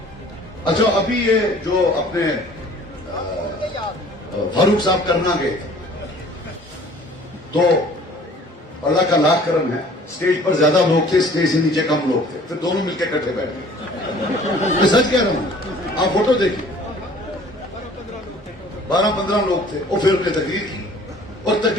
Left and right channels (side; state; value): both; normal; correlation 0.51